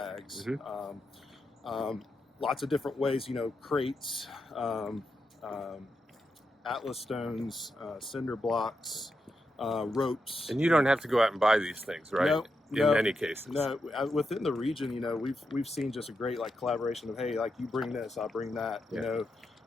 Lots of different ways, crates, Atlas stones, cinder blocks, ropes. And you don't have to go out and buy these things, right? No, in many cases. No, within the region, we've seen just a great collaboration of, hey, you bring this, I'll bring that,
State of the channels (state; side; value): normal; both; correlation 0.85